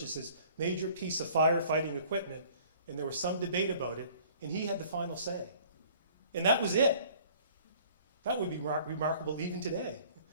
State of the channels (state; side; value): inverted; both; correlation -0.52